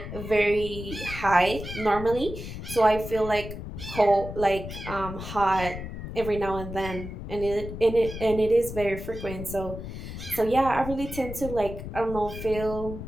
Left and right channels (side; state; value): left; noise; rumble, 9 dB below the sound